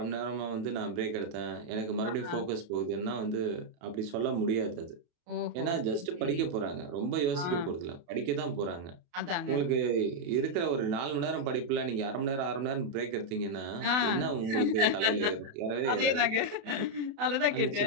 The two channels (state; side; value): late; left; 28 ms